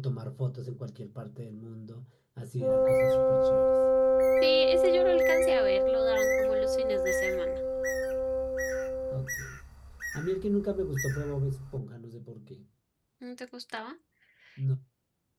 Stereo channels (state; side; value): identical; both; correlation 1.00